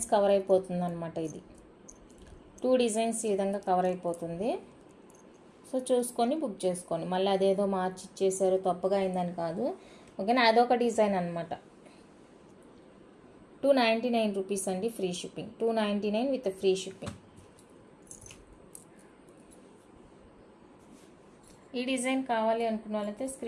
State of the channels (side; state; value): both; identical; correlation 1.00